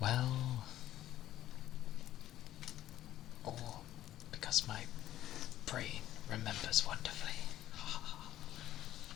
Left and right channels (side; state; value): right; quieter; 13.2 dB